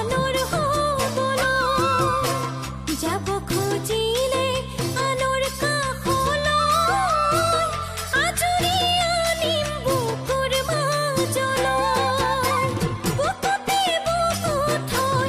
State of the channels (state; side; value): identical; both; correlation 1.00